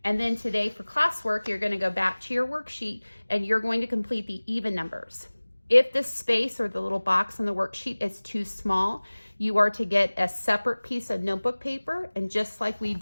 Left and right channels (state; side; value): inverted; both; correlation -1.00